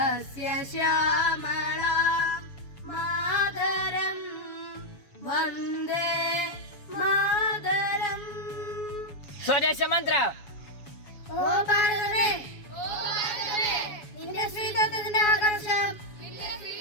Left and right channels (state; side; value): late; right; 7.1 ms